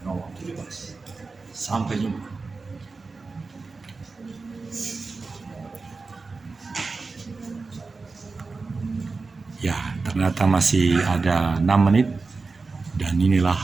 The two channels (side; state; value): left; quieter; 4.1 dB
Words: nomor 17. Sampai jumpa. Ternyata masih ada 6 menit dan inilah